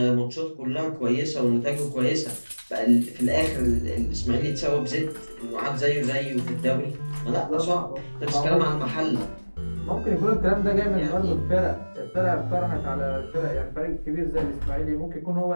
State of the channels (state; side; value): inverted; both; correlation -1.00